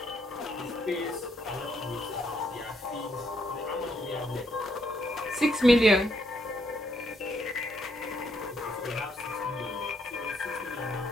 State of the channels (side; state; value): both; normal; correlation 0.74